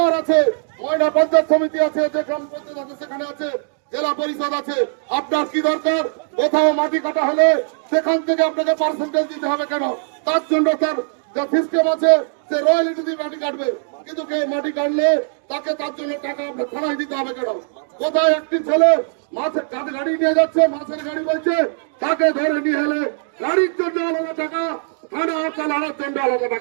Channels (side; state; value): left; silent; digital silence